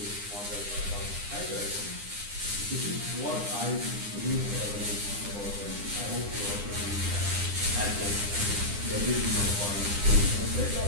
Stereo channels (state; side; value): late; left; 9.8 ms